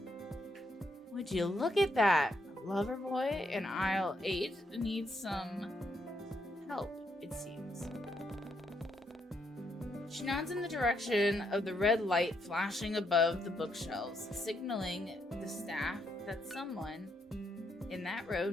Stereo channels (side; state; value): both; normal; correlation 0.77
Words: Would you look at that? Lover boy in aisle 8 needs some help, it seems. She nods in the direction of the red light flashing above the bookshelves, signaling the staff that someone in that row